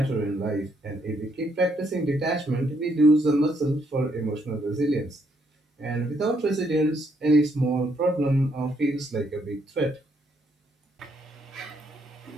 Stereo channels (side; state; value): both; normal; correlation 0.73